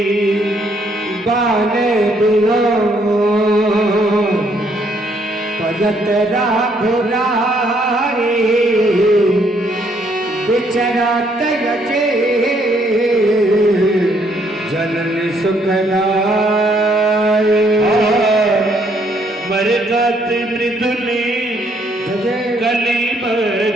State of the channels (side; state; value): both; normal; correlation 0.69